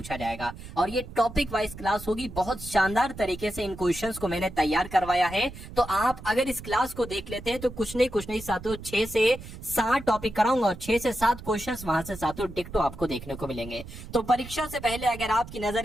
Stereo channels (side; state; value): right; noise; rumble, 14 dB below the sound